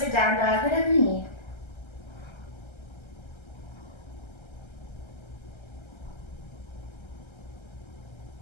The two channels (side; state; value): right; late; 1.3 ms